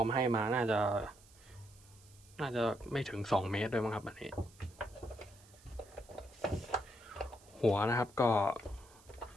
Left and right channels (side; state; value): right; noise; hiss, 25 dB below the sound